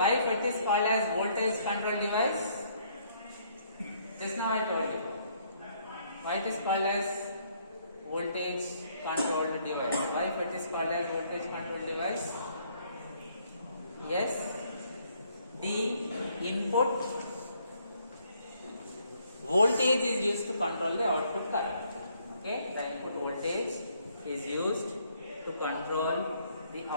FET is called as voltage control device? Just now I told you. Why it is called as voltage controlled device? Why FET is called as voltage control device? Yes. the input voltage is used to control the output current. Okay, the input voltage is used to control the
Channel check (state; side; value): inverted; both; correlation -0.67